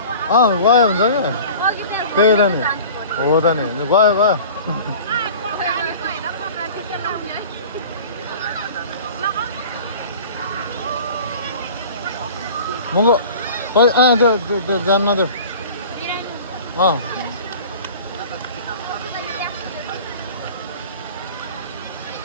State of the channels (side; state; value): both; inverted; correlation -0.41